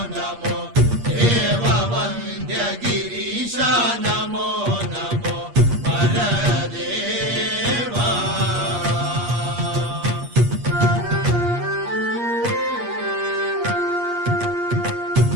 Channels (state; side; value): late; left; 8.5 ms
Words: ನಮೋ ದೇವ ವಂದ್ಯ ಗಿರೀಶ ನಮೋ ನಮೋ ಪರದೇವ